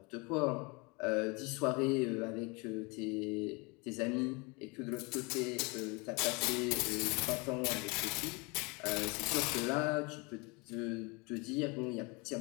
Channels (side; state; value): right; quieter; 28.7 dB